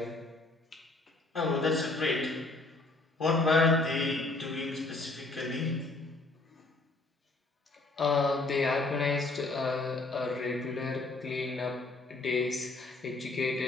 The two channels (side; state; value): right; quieter; 3.2 dB